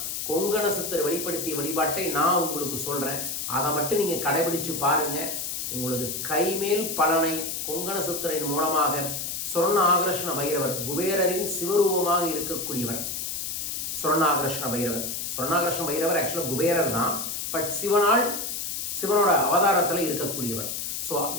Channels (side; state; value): left; noise; hiss, 4 dB below the sound